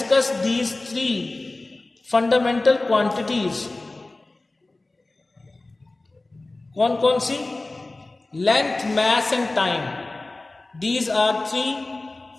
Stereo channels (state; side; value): quieter; right; 3.0 dB